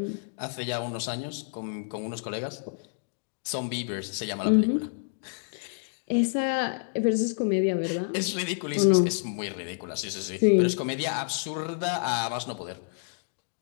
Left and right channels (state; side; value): silent; right; digital silence